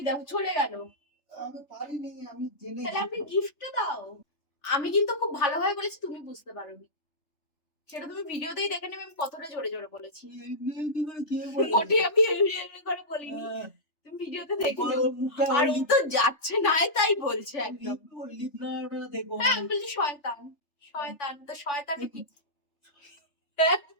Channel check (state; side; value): late; right; 3.3 ms